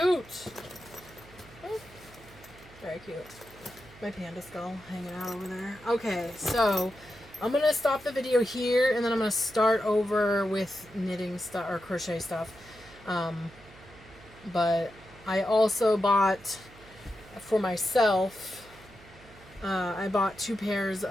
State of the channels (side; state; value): right; noise; hum, 22 dB below the sound